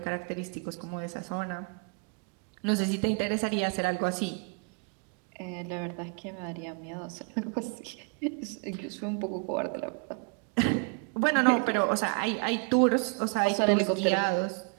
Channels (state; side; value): quieter; left; 35.0 dB